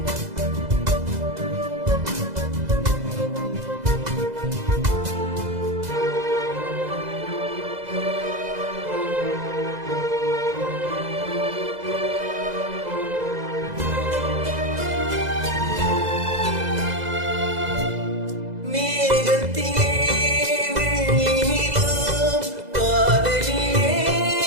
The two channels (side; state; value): left; late; 2.0 ms